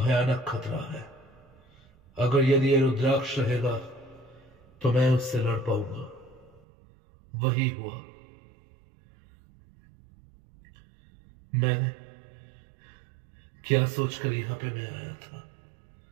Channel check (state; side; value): drops out; left; at 6.6 s